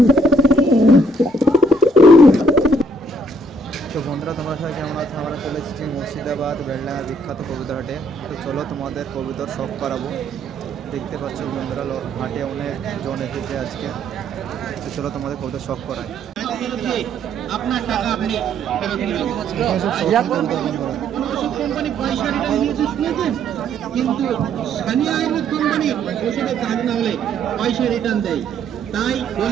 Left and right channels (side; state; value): both; normal; correlation 0.67